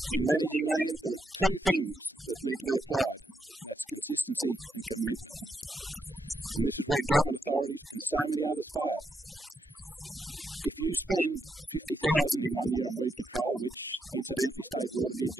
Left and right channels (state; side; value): normal; both; correlation 0.80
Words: In managing land, there are two things that need to be applied, and that's consistency and commitment. And this is where government authorities and so many others fail. If you spend $50,000 in 1 year on weed control, which incidentally State Water did